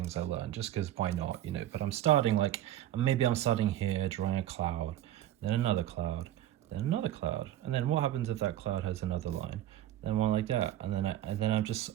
I learned just because why not, you know. But I'm starting like, maybe I'm starting here drawing a cloud, then another cloud, then another cloud, and then what happens if that cloud has another line, then one like that, and then I'm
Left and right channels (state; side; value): quieter; left; 12.9 dB